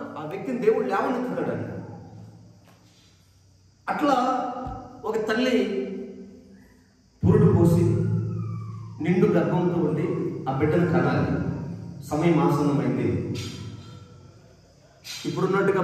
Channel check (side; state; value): both; identical; correlation 1.00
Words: ఆ వ్యక్తిని దేవుడు లేవనెత్తుతాడని. అట్లా ఒక తల్లి పురుడు పోసి నిండు గర్భంతో ఉండి ఆ బిడ్డను కనాలి. సమయం ఆసన్నమైంది. ఇప్పుడున్నట్టుగా